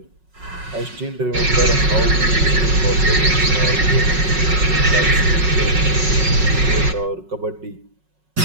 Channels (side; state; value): left; late; 5.4 ms